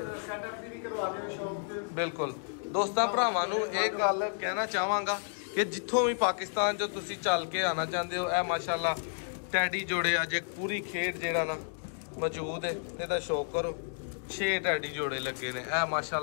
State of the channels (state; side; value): silent; right; digital silence